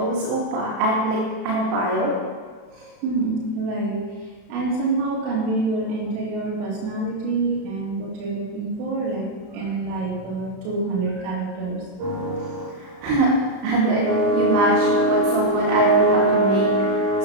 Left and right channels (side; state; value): left; late; 31 ms